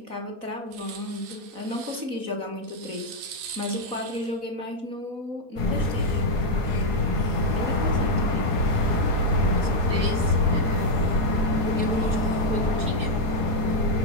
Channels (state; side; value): late; left; 4.0 ms